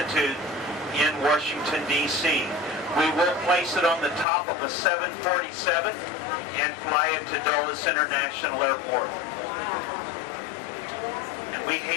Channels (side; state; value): right; drops out; at 4.2 s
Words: in Washington, D.C. We will place it on the top of a 747 and fly it to Dulles International Airport. And we